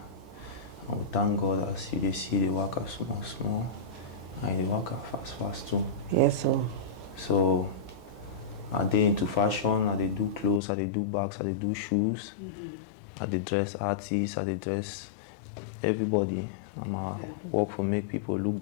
And we thank God as you see the worker small. And the worker fast too. Yes, sir. So I dey into fashion, I dey do clothes, I dey do bags, I dey do shoes. I dey dress artists, I dey dress everybody. I work for make people look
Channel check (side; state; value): right; drops out; at 10.6 s